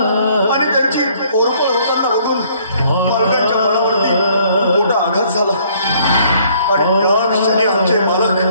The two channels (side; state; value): both; inverted; correlation -0.62